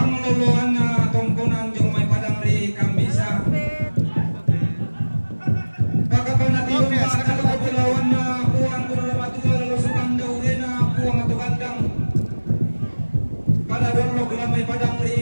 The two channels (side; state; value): both; inverted; correlation -1.00